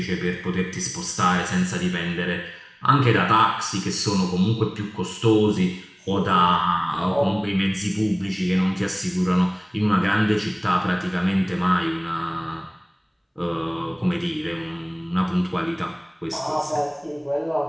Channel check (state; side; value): identical; both; correlation 1.00